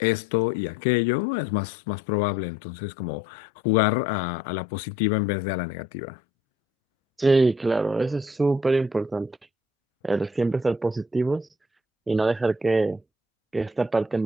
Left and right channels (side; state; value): both; normal; correlation 0.59